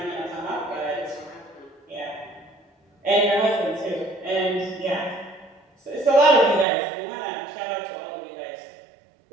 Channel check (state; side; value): drops out; left; at 6.7 s